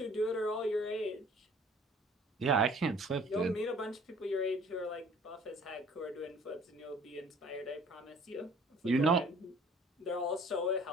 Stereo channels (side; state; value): both; normal; correlation 0.53